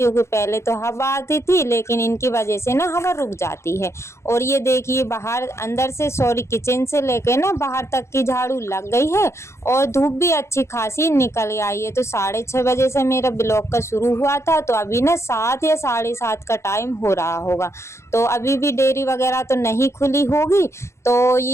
पहले तो हवा आती थी लेकिन इनकी वजह से ना हवा रुक जाती है। और ये देखिए बाहर अंदर से किचन से लेके ना बाहर तक की झाड़ू लग गई है और धूप भी अच्छी खासी निकल आई है। तो 6:30 बजे से मेरा ब्लॉग का शुरू हुआ था, तो अभी ना 7 या 7:30 का टाइम हो रहा होगा। तो अभी भी डेयरी वगैरह तो नहीं खुली होगी। तो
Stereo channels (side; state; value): right; late; 0.13 ms